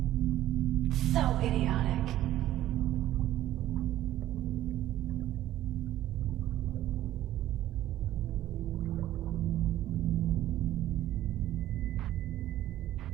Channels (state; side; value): quieter; left; 13.6 dB